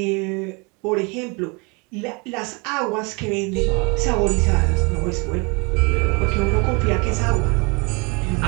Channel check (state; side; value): quieter; left; 30.3 dB